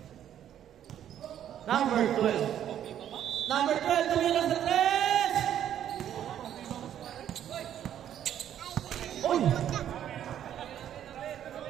Number 12. Number 12, tumila sa 3! Uy!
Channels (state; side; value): quieter; left; 10.5 dB